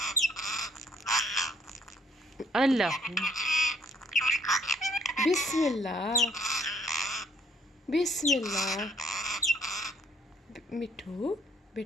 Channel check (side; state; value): both; normal; correlation 0.64